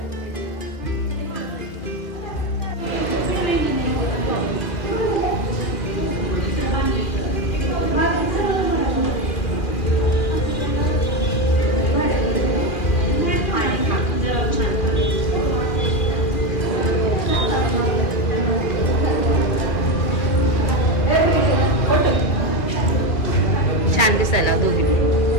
छान दिसायला दोघी.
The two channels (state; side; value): late; right; 2.4 ms